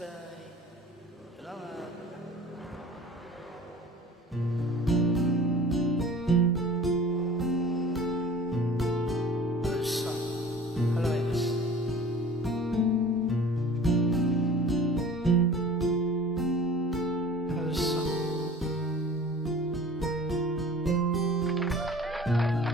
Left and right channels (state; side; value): normal; both; correlation 0.44